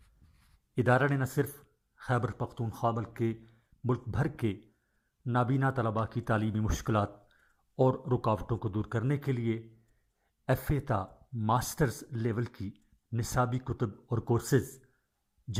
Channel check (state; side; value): identical; both; correlation 1.00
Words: ادارہ نے نہ صرف خیبر پختونخوا بلکہ ملک بھر کے نابینا طلباء کی تعلیمی مشکلات اور رکاوٹوں کو دور کرنے کے لیے ایف اے تا ماسٹرز لیول کی نصابی کتب اور کورسز،